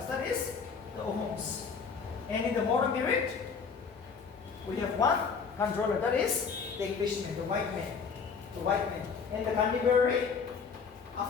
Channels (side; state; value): right; quieter; 5.7 dB